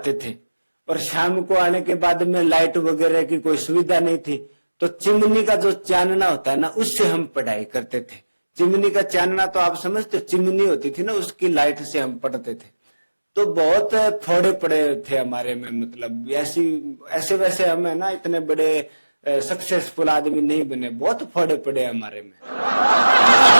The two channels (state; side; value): inverted; both; correlation -1.00